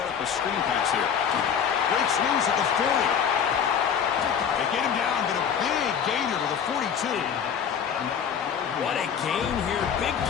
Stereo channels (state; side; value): quieter; right; 7.7 dB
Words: up a screen pass here. Breaks loose at the 40. They get him down, but a big gainer to the 42. What a gain here. Big